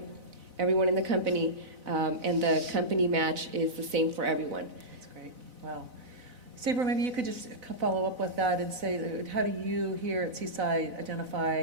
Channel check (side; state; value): left; late; 4.0 ms